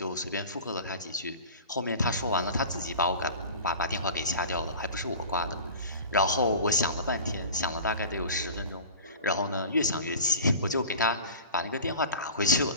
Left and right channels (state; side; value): inverted; both; correlation -0.37